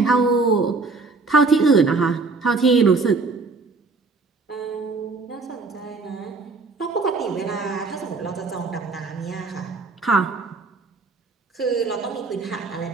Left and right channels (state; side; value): quieter; left; 3.9 dB